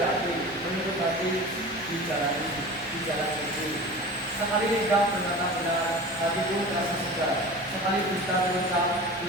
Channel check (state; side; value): normal; both; correlation 0.35